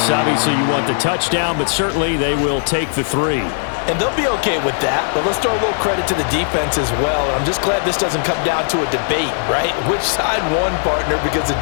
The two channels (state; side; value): silent; right; 68 dB below the other